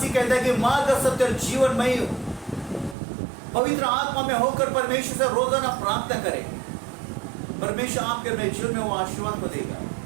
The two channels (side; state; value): left; drops out; at 3.0 s